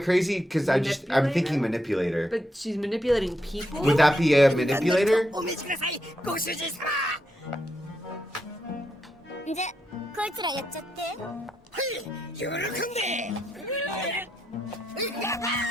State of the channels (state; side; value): normal; both; correlation 0.81